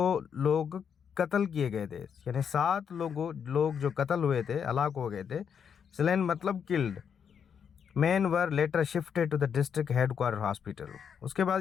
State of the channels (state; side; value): quieter; right; 7.4 dB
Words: लोग कत्ल किए गए थे, यानी 7 लोग जो कत्ल हुए थे, हलाक हो गए थे। स्लेन मतलब killed. Man were later shifted to the district headquarter hospital. उसके